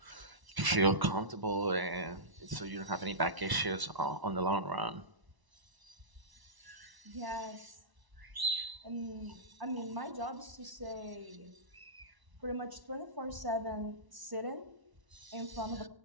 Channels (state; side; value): late; left; 1.0 ms